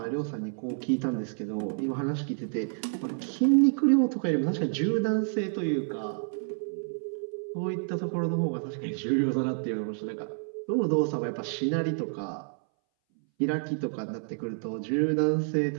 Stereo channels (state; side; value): silent; left; 59 dB below the other